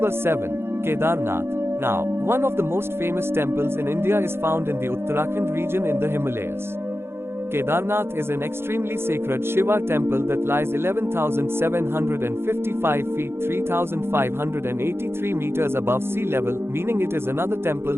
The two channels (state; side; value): late; left; 0.12 ms